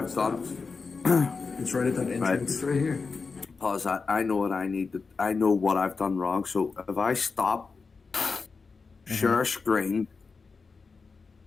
done. It's right at that entrance. It's right here. Pause that. I know what I need to. I know what I've done wrong. So if I stop, share screen.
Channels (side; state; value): right; quieter; 4.7 dB